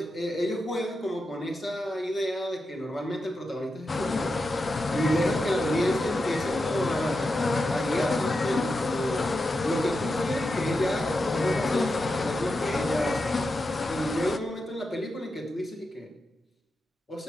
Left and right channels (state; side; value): normal; both; correlation 0.89